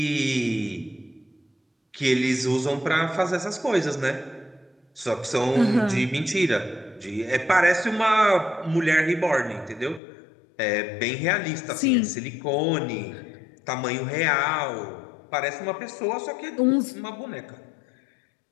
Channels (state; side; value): drops out; right; at 10.0 s